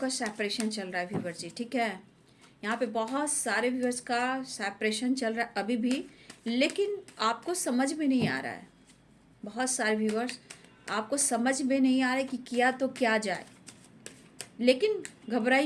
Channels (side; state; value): both; identical; correlation 1.00